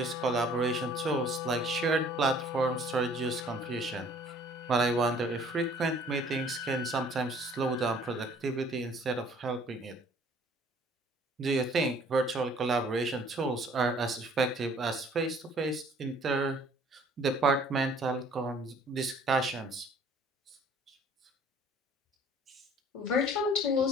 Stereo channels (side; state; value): both; normal; correlation 0.55